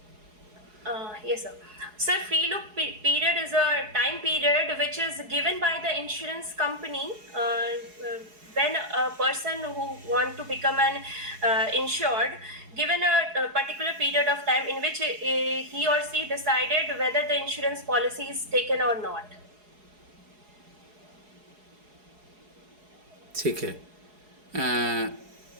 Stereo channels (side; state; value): left; late; 4.8 ms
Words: Yes, sir. Sir, free look period is a time period which is given by the insurance company when a person who want to become an insured, given a particular period of time in which he or she decided whether the insurance policy is taken or not. ठीक है.